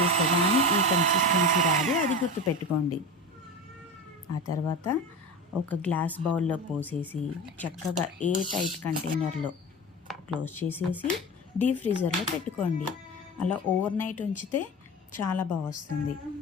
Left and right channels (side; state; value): both; normal; correlation 0.28